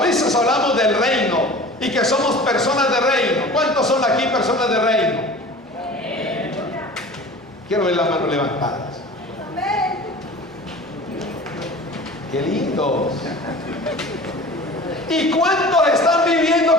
veces hablamos del reino y que somos personas de reino. ¿Cuántos son aquí personas de reino? Quiero ver las manos levantadas. ¡Qué lindos! ¿Y cuántos están viviendo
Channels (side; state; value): both; normal; correlation 0.40